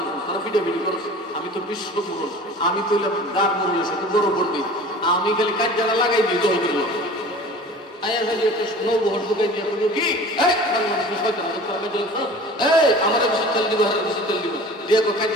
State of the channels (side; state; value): both; normal; correlation 0.42